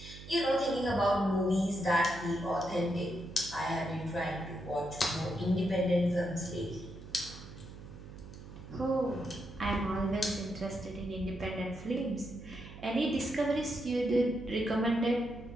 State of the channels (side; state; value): right; noise; hum, 14 dB below the sound